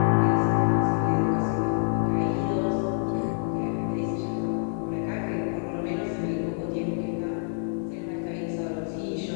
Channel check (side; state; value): right; silent; digital silence